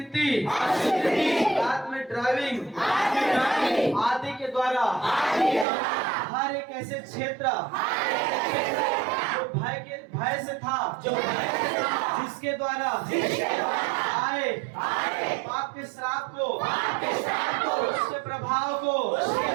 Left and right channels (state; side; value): drops out; left; at 5.7 s